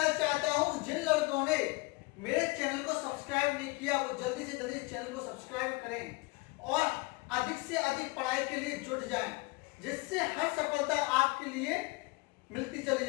चाहता हूं, जिन लोगों ने मेरे चैनल को सब्सक्राइब नहीं किया वो जल्दी से जल्दी चैनल को सब्सक्राइब करें और अधिक से अधिक पढ़ाई के लिए जुट जाएं, जिससे हर सफलता आपके लिए मिलती चली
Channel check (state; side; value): quieter; right; 25.1 dB